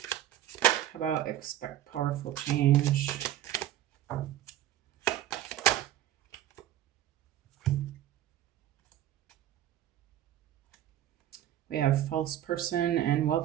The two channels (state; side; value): quieter; left; 12.6 dB